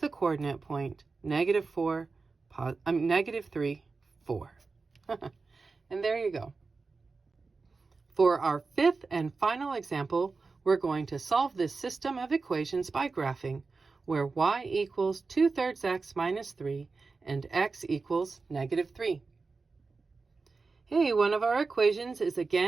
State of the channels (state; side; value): quieter; left; 4.2 dB